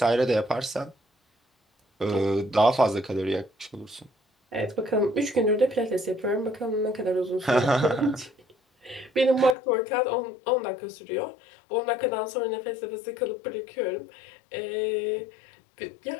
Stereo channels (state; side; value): drops out; right; at 9.6 s